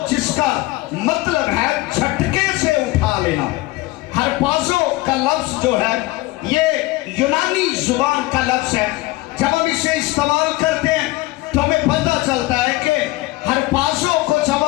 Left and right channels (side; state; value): right; quieter; 19.9 dB